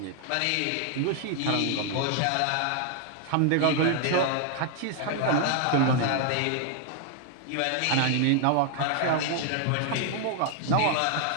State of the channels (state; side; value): different; both; correlation 0.00